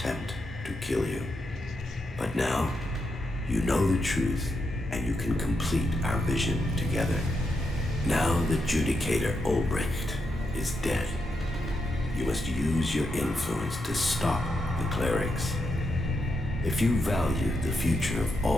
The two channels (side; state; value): both; normal; correlation 0.83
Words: to kill you. But now, you know the truth, and you can complete our vision together. Now the Judicator Ulbricht is dead. You must use your influence to stop the clerics. If you value the future of